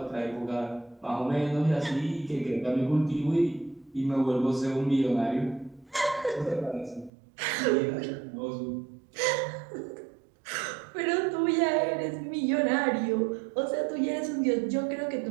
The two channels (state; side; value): drops out; left; at 7.1 s